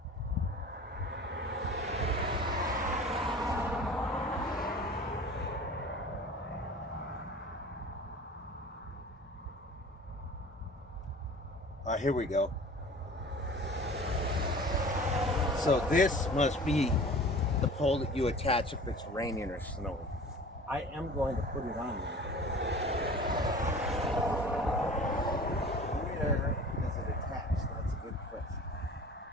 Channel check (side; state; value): both; normal; correlation 0.42